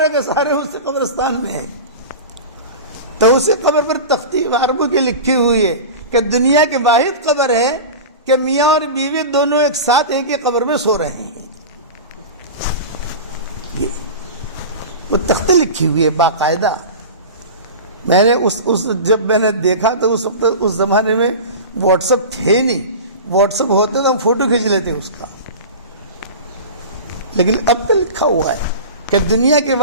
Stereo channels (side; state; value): both; inverted; correlation -0.30